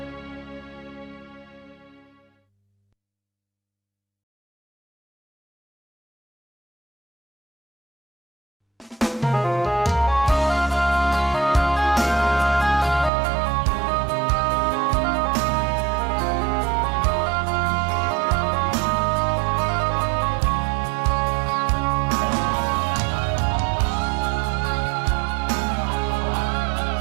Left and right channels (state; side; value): drops out; left; at 13.1 s